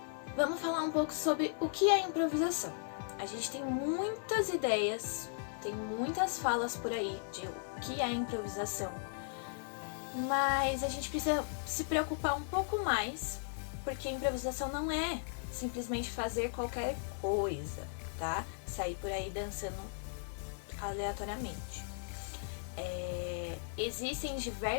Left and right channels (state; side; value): silent; right; digital silence